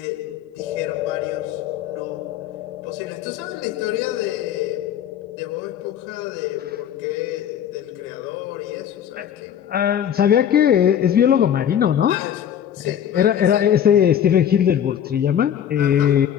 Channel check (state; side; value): quieter; right; 9.5 dB